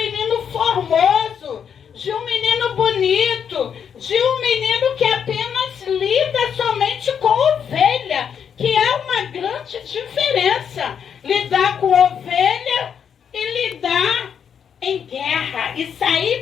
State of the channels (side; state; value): right; quieter; 7.7 dB